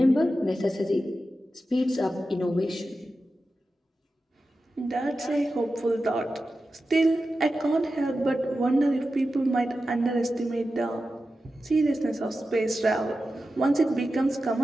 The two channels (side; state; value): both; normal; correlation 0.92